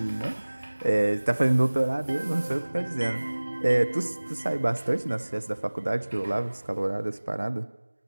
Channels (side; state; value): both; inverted; correlation -1.00